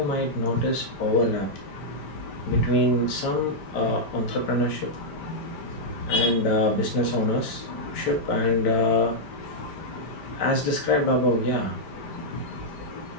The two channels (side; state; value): right; late; 5.1 ms